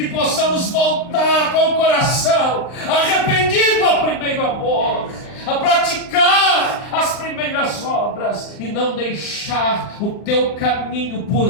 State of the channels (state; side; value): late; right; 39 ms